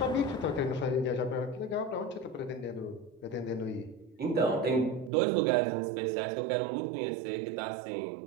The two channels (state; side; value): drops out; left; at 5.1 s